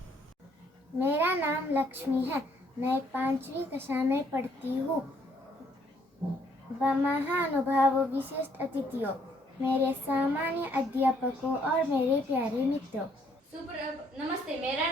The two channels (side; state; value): both; normal; correlation 0.67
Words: मेरा नाम लक्ष्मी है। मैं 5वीं कक्षा में पढ़ती हूँ। महानुभावों, विशिष्ट अतिथियों, मेरे सामान्य अध्यापकों और मेरे प्यारे मित्रों, नमस्ते। मेरा